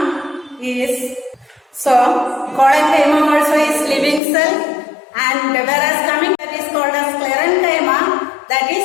is, so collenchyma also is living cell, and whereas coming that is called as sclerenchyma, that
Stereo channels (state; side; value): drops out; right; at 4.2 s